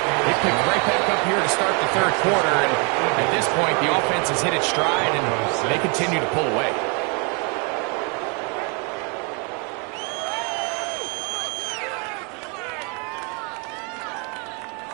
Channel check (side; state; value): left; quieter; 33.9 dB